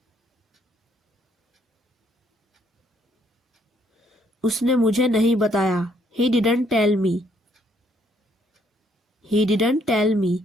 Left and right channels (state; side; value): normal; both; correlation 0.69